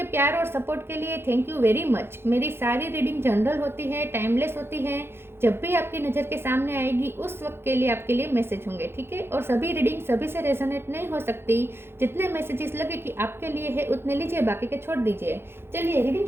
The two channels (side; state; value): left; late; 0.11 ms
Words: प्यार और सपोर्ट के लिए थैंक यू वेरी मच। मेरी सारी रीडिंग जनरल होती है, टाइमलेस होती है। जब भी आपकी नज़र के सामने आएगी उस वक्त के लिए आपके लिए मैसेज होंगे, ठीक है। और सभी रीडिंग सभी से रेजोनेट नहीं हो सकती। जितने मैसेजेस लगे कि आपके लिए है उतने लीजिए, बाकी के छोड़ दीजिए। चलिए रीडिंग